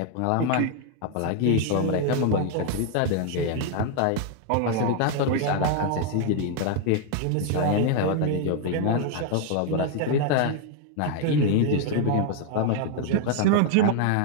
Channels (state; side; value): different; both; correlation 0.00